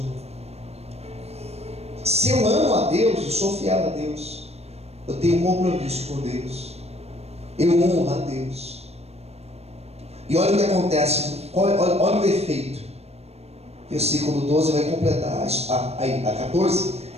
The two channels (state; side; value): late; left; 0.30 ms